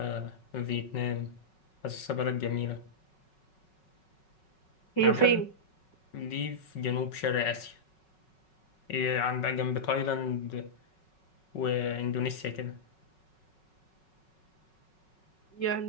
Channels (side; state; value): right; late; 5.4 ms